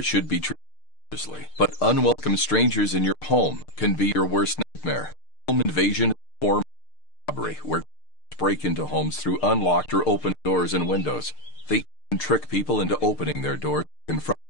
should be treated seriously, but unwelcome strangers in your home can be your worst nightmare. Home invasion is a form of robbery, where break into homes through unlocked or open doors and windows. They even trick people into opening their doors and confront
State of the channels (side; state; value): right; late; 6.6 ms